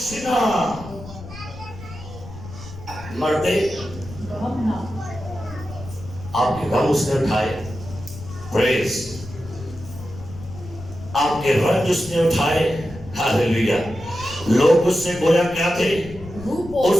مرد آپ کے غم اس نے اٹھائے، پریز، آپ کے رنج اس نے اٹھائے، ہاللیلویا۔ لوگ اس سے گویا کیا تھے؟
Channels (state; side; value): noise; left; rumble, 14 dB below the sound